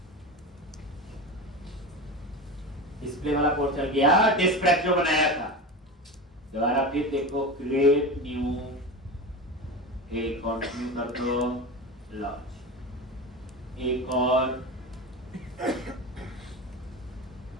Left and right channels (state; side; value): normal; both; correlation 0.25